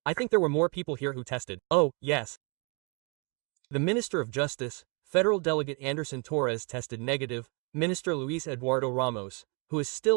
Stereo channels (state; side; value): quieter; left; 33.3 dB